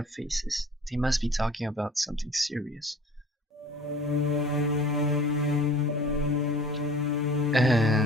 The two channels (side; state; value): both; normal; correlation 0.46